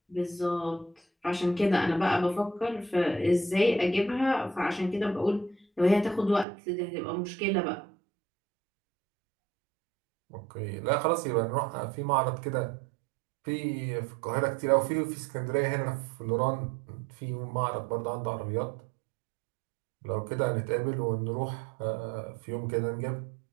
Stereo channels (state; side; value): drops out; left; at 6.5 s